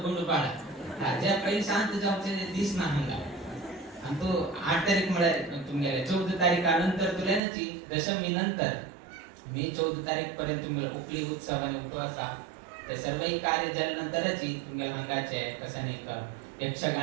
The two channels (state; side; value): drops out; left; at 7.4 s